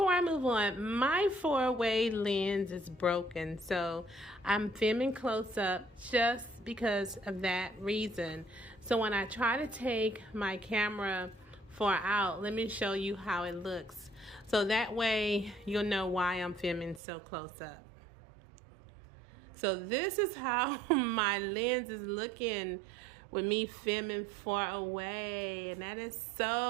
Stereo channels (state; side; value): drops out; left; at 17.0 s